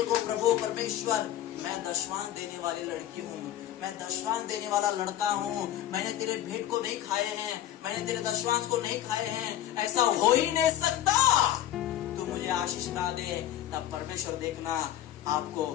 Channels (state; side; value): quieter; right; 12.2 dB